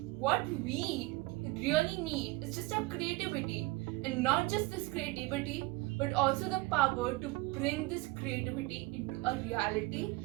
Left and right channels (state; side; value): quieter; left; 21.6 dB